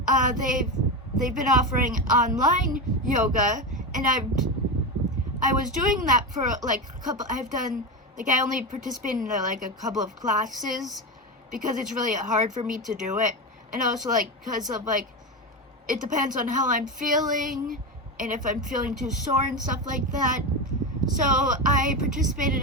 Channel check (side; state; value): both; normal; correlation 0.17